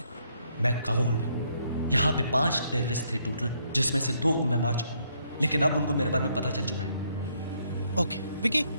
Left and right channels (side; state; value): both; inverted; correlation -0.72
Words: मैं काबुल में हूँ। यहाँ पे 5 टेररिस्ट थे टोटल, जिसमें से 2 को मैं मार चुका हूँ, लेकिन अब उनको मेरे बारे में पता चल चुका है। ओके विक्की,